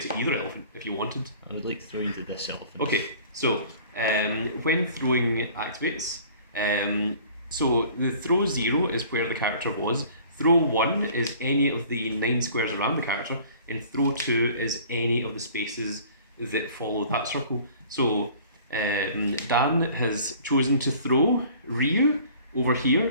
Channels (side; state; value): both; inverted; correlation -0.49